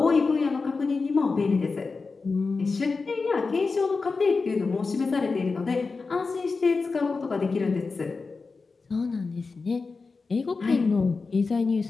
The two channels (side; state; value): right; quieter; 4.3 dB